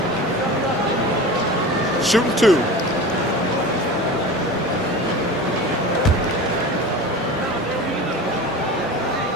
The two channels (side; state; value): both; normal; correlation 0.33